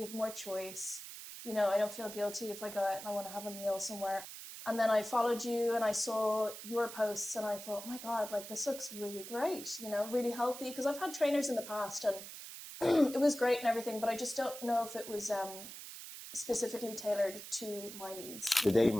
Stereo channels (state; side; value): noise; right; hiss, 11 dB below the sound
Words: have more choice. You know, I don't feel guilty if I go out and I want to have a meal somewhere. And then I followed you and I saw your posts and I thought, my God, like this looks really great, you know, really healthy. Because I've had trainers in the past and it was great and everything, but I just don't know if it was specifically tailored to my needs. Today,